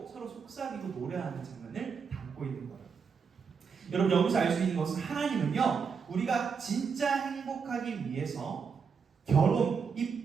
서로 속삭이고 노래하는 장면을 담고 있는 거예요. 여러분 여기서 알 수 있는 것은 하나님은요 우리가 진짜 행복하기 위해서 결혼, 이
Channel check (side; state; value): left; quieter; 5.9 dB